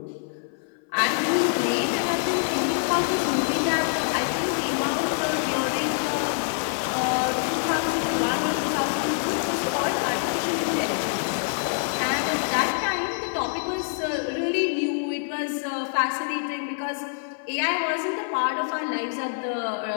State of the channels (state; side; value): silent; right; 56 dB below the other